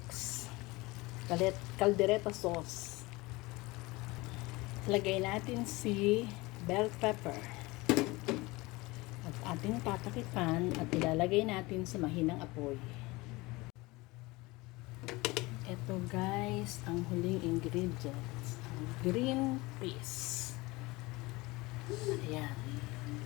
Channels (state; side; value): quieter; right; 22.4 dB